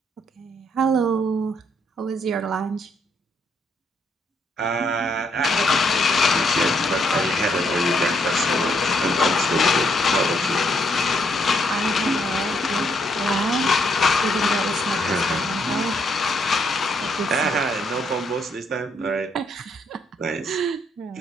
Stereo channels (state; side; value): normal; both; correlation 0.73